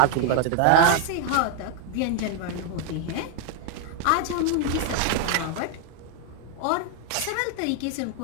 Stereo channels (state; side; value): different; both; correlation 0.00